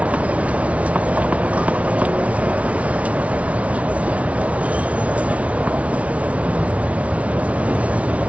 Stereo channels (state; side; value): late; left; 0.065 ms